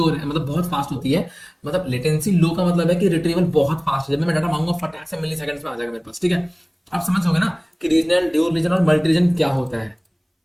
है, मतलब बहुत फास्ट होती है, मतलब लेटेंसी लो का मतलब है कि रिट्रीवल बहुत फास्ट है, जब मैं डाटा मांगूंगा फटाक से मिली सेकंड्स में आ जाएगा मेरे पास, ठीक है। आप समझ गए ना कि रीजनल, ड्यूल रीजन और मल्टी रीजन क्या होता है।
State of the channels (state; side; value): identical; both; correlation 1.00